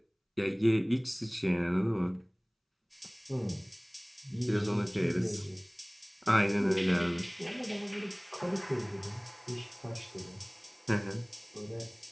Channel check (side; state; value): both; identical; correlation 1.00